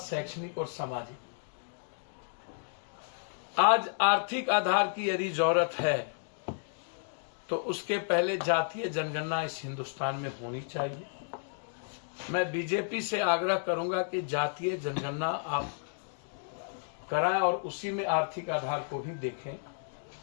और सामाजिक। आज आर्थिक आधार की यदि जरूरत है तो उसके पहले जातीय जनगणना इस हिंदुस्तान में होनी चाहिए। मैं बीजेपी से आग्रह करूंगा कि जातीय जनगणना आप कराएं और उसी में आर्थिक आधार को भी देखें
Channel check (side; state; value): right; silent; digital silence